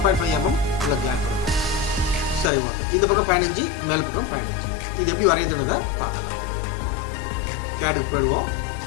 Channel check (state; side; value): drops out; right; at 2.5 s